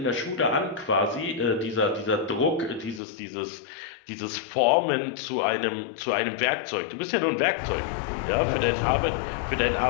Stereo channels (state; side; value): drops out; right; at 3.0 s